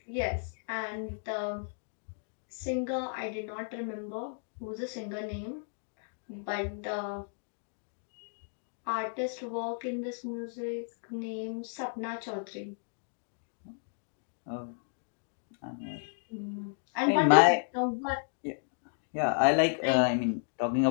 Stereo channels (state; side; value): silent; right; digital silence